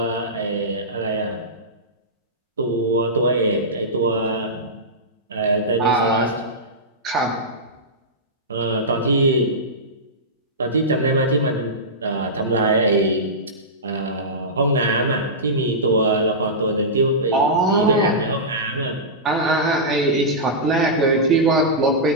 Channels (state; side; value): normal; both; correlation -0.15